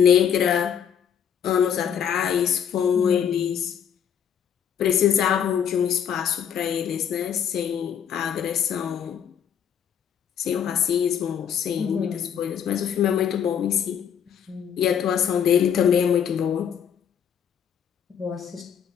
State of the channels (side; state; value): right; quieter; 8.3 dB